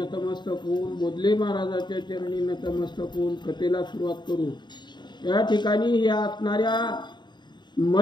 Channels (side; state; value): right; late; 0.22 ms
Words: होऊन बोधले महाराजाच्या चरणी नतमस्तक होऊन कथेला सुरुवात करू. या ठिकाणी या असणाऱ्या